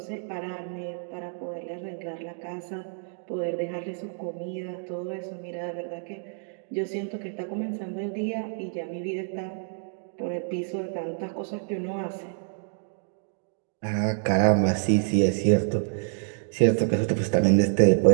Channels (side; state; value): left; silent; digital silence